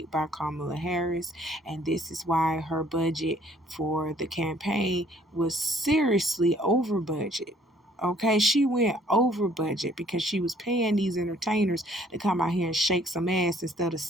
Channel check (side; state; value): both; normal; correlation 0.60